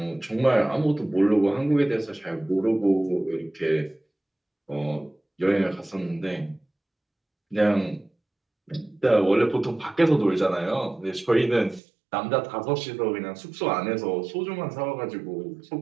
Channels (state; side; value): drops out; left; at 11.8 s